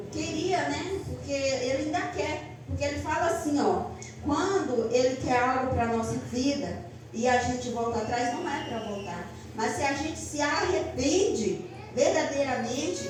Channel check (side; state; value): both; identical; correlation 1.00